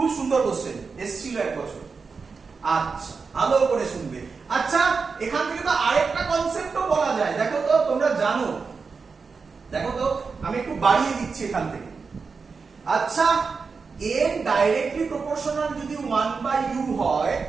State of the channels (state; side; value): quieter; left; 4.9 dB